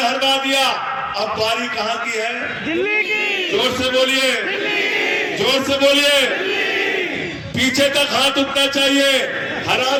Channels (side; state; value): both; identical; correlation 1.00